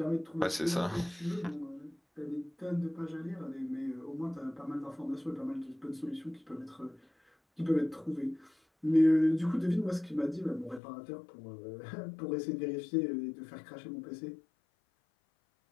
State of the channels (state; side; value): drops out; right; at 10.8 s